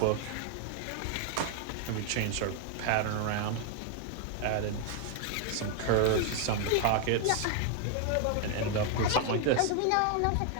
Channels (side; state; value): both; different; correlation 0.00